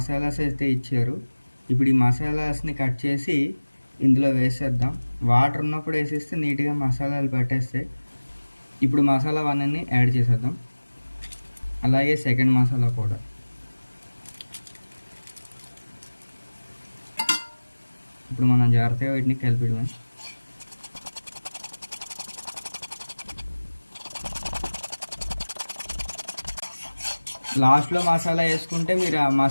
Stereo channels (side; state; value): both; inverted; correlation -1.00